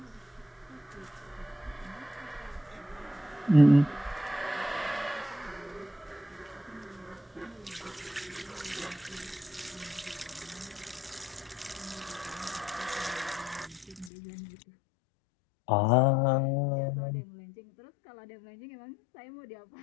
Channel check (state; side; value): drops out; right; at 14.1 s